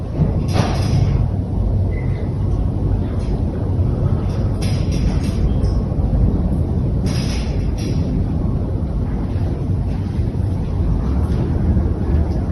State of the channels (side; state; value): both; identical; correlation 1.00